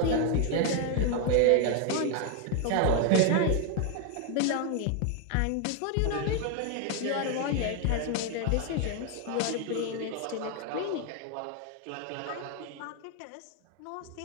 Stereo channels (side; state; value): both; different; correlation 0.00